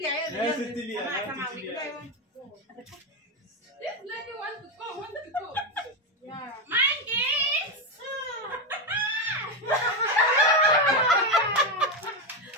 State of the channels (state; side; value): normal; both; correlation 0.10